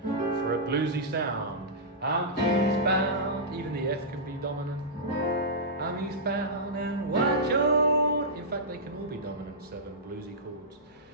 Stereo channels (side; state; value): both; normal; correlation -0.15